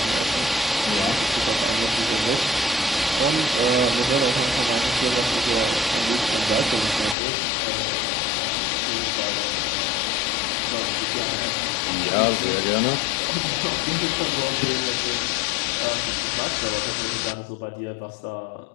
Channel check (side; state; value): right; drops out; at 7.2 s